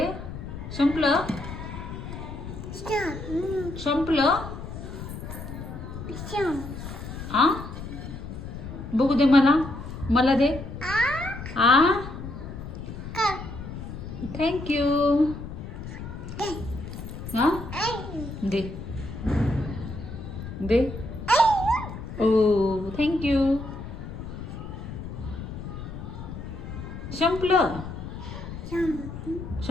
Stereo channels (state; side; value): noise; left; rumble, 9 dB below the sound